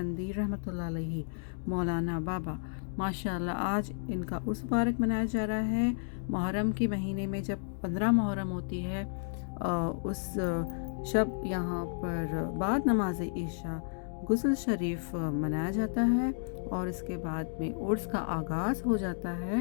रहमतुल्लाह अलैहि मौलाना बाबा। माशाअल्लाह आज इनका उर्स मुबारक मनाया जा रहा है। मुहर्रम के महीने में जब 15 मुहर्रम होती है उस शब यहाँ पर बाद नमाज ईशा गुस्ल शरीफ मनाया जाता है और इसके बाद में उर्स का आगाज़ हो जाता है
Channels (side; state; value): right; silent; digital silence